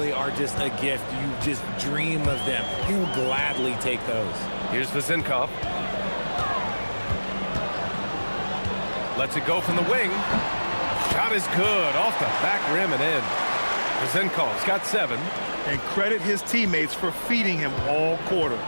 are just a gift. You just dream of them. He'll gladly take those. Here's Vezenkov. Lets it go from the wing. Shot is good. Off the back rim and in. Vezenkov's got 7. And credit his teammates for feeding him all quarter.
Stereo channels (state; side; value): inverted; both; correlation -1.00